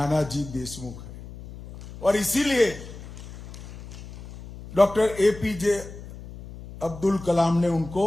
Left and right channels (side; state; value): left; noise; hum, 14 dB below the sound